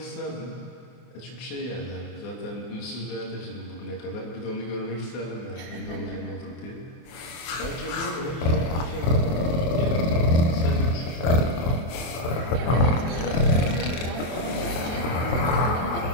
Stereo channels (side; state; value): right; late; 24 ms